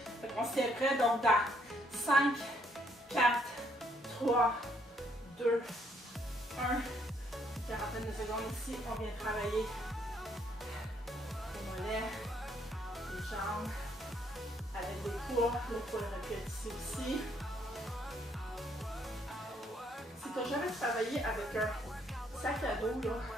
Fait qu'on s'y est prêt, donc dans 5, 4, 3, 2, 1. Une quarantaine de secondes ici, on vient travailler les mollets, les jambes, avec des poids. Le poids aurait pu être ici aussi. Si tu n'as jamais travaillé avec un sac à dos là,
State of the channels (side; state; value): both; normal; correlation 0.70